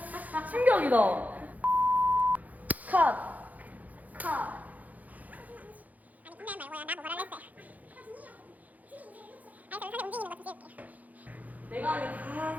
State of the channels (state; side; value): late; left; 0.078 ms